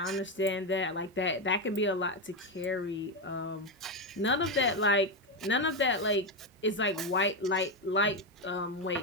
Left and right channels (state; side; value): normal; both; correlation 0.09